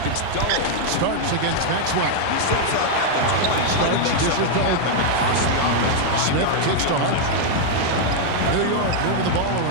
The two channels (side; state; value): both; different; correlation -0.01